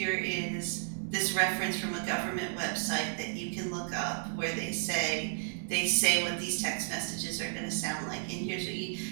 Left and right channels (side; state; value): left; silent; 55 dB below the other